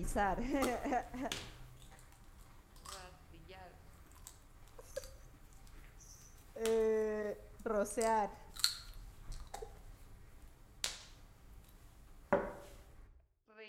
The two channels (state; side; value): identical; both; correlation 1.00